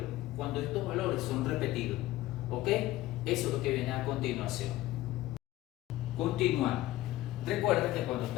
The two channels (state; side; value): quieter; right; 16.0 dB